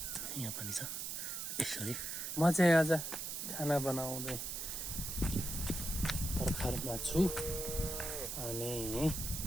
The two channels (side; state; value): right; noise; hiss, 4 dB below the sound